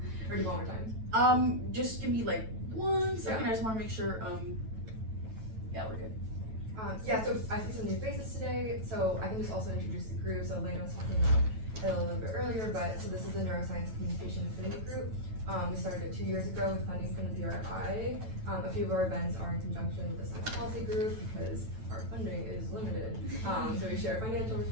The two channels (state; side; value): late; left; 9.1 ms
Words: Or do you want more time? Just give me like 1 second. Yeah. I just want to make sure. Yeah, we're good. Yeah, so I see some new faces today, so I can just also introduce the group. So Elena was talking about it a little bit earlier, but so this is the Neuroscience Communication Affinity group. We started it 2 years ago with funding from the BRI. A few of our events are in conjunction with the Science Policy Group because our funding is limited. So we share financial